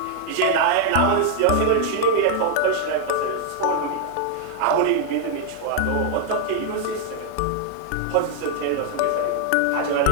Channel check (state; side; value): different; both; correlation 0.00